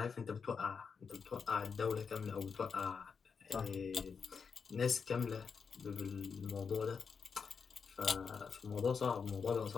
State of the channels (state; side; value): quieter; right; 5.8 dB